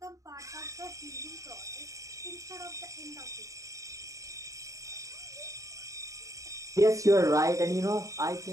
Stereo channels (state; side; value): late; left; 0.16 ms